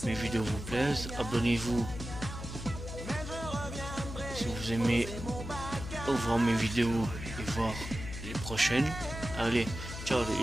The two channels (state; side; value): noise; left; hum, 9 dB below the sound